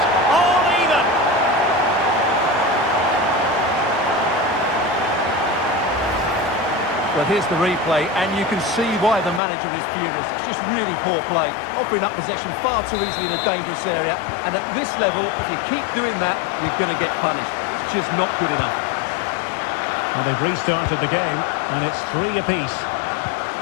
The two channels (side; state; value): right; drops out; at 9.4 s